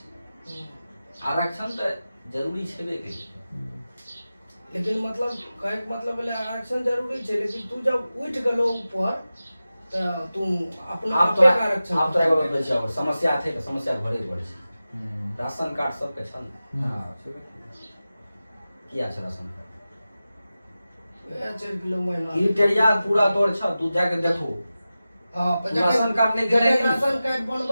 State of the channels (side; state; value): both; inverted; correlation -0.95